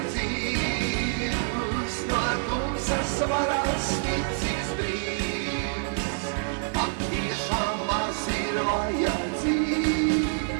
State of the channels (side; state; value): left; silent; 57 dB below the other